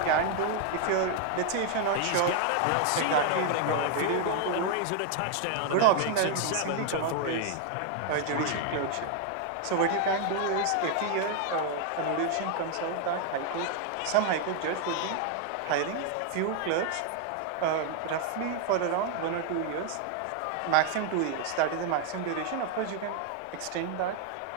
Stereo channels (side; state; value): both; different; correlation 0.00